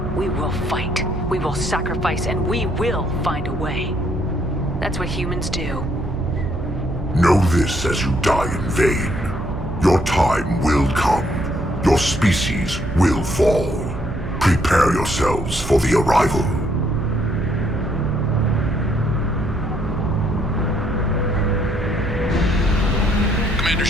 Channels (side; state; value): right; noise; hum, 9 dB below the sound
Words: we will fight, we will sacrifice, and we will find a way. That's what humans do. Know this as you die in vain. Your time will come. Your species will fall. Prepare yourselves for the arrival. Commander